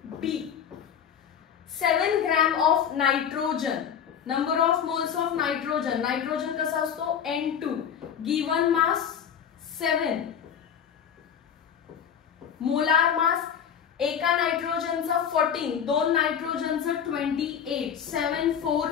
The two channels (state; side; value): quieter; right; 8.3 dB